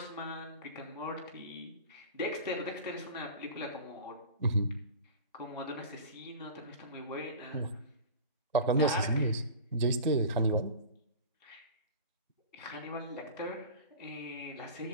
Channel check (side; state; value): both; inverted; correlation -0.35